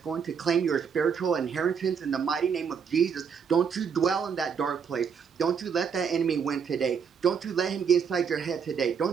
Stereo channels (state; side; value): quieter; left; 6.7 dB